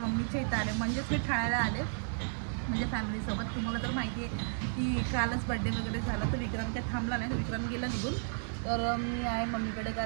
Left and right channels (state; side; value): silent; left; 56 dB below the other